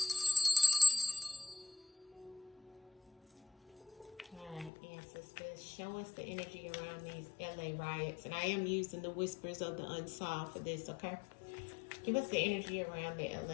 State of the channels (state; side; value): drops out; right; at 4.7 s